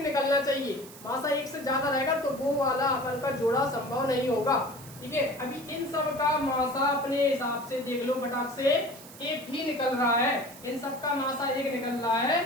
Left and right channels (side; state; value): right; noise; hiss, 18 dB below the sound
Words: चाहिए, मासा एक से ज्यादा रहेगा तो वो वाला अपन का जोड़ा संभव नहीं होगा। ठीक है, अभी इन सब का मासा अपने हिसाब से देख लो फटाक से, एक ही निकल रहा है, इन सब का मासा एक निकल रहा है,